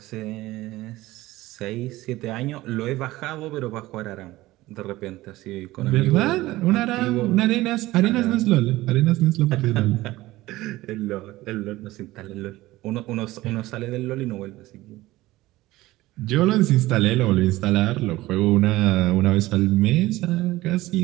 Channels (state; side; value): quieter; left; 17.8 dB